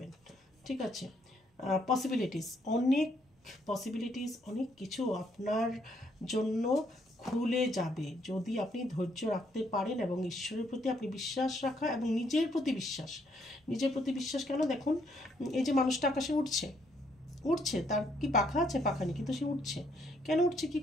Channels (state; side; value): normal; both; correlation 0.70